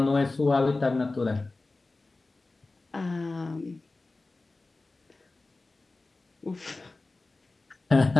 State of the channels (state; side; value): quieter; right; 3.3 dB